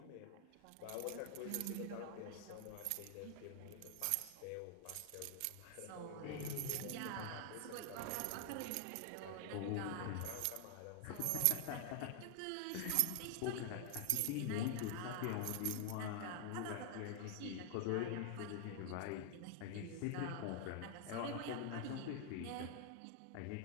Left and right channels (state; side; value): different; both; correlation 0.00